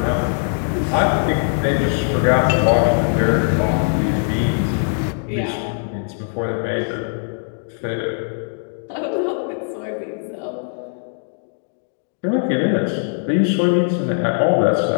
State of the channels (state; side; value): silent; right; digital silence